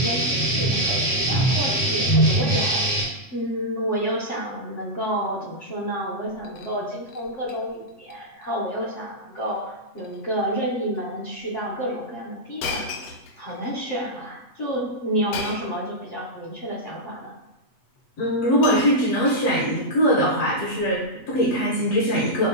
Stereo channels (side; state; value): right; late; 8.1 ms